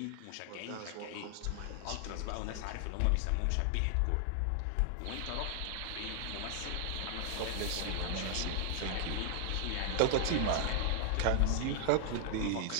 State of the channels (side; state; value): both; different; correlation 0.00